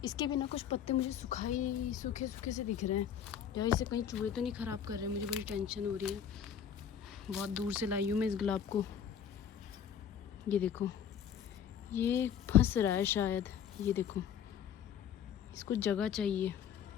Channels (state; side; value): quieter; right; 8.5 dB